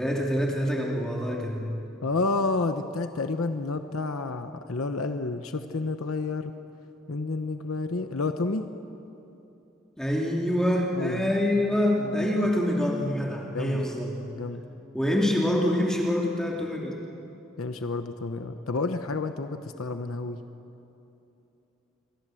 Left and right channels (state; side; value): normal; both; correlation 0.64